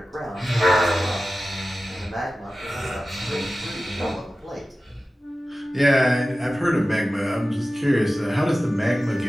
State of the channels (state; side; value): normal; both; correlation 0.95